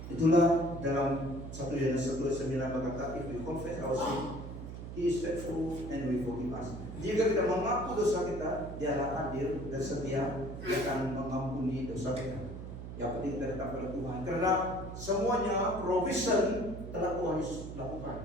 Itulah dalam 1 Yohanes 1:9 berkata, if we confess our sin, He is faithful and will forgive us. Jika kita mengaku dosa kita, Dialah adil dan setia, Dia akan mengampuni dosa kita. Yang penting kita tetap pada Tuhan, karena semuanya provision telah Tuhan Yesus lakukan.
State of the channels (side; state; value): right; noise; hum, 9 dB below the sound